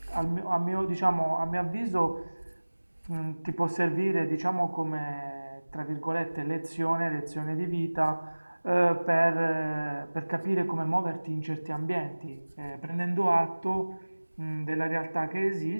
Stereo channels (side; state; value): both; inverted; correlation -1.00